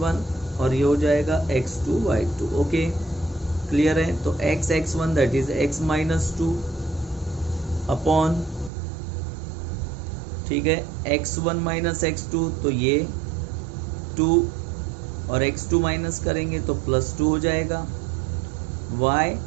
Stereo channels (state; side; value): drops out; left; at 8.7 s